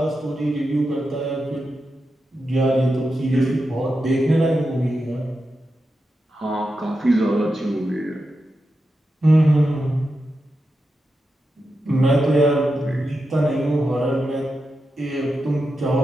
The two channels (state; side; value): normal; both; correlation 0.89